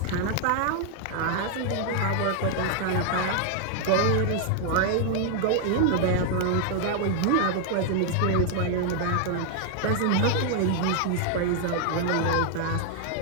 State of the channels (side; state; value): both; different; correlation 0.00